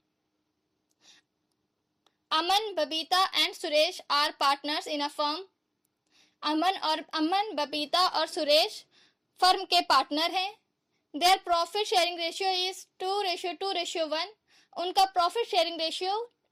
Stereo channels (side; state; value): both; identical; correlation 1.00